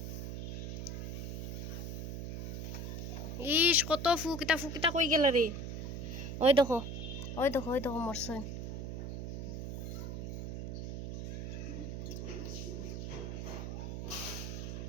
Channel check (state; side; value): noise; right; hum, 5 dB below the sound